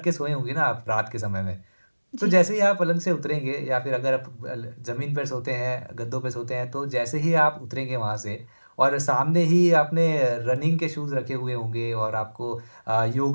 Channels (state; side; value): inverted; both; correlation -1.00